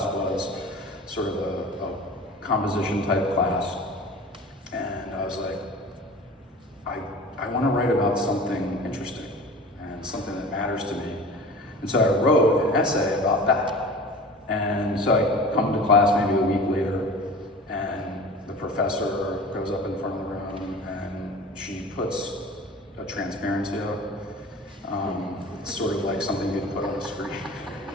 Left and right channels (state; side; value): normal; both; correlation 0.38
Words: was sort of a composition type class. And I was like, I want to write about something interesting and something that matters to me. And so I wrote an essay about that. And so I come to class maybe a week later, and the professor goes up in front of the room and she puts a transparency up. It's sort of like something you'd put on a screen.